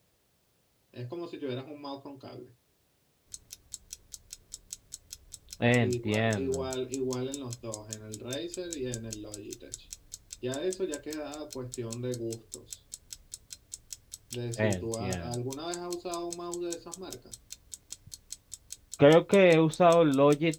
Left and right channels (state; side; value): identical; both; correlation 1.00